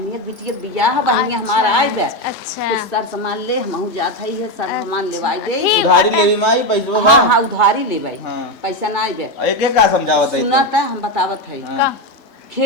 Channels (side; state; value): right; late; 3.5 ms